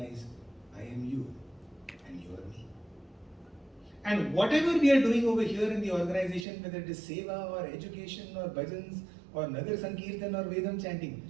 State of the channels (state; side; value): drops out; left; at 6.5 s